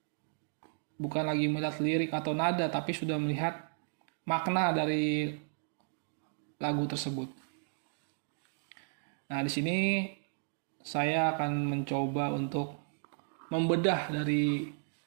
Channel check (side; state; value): left; silent; digital silence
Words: bukan lagi melihat lirik atau nada, tapi sudah melihat makna dari lagu tersebut. Nah, di sini saya akan mencoba untuk membedah dari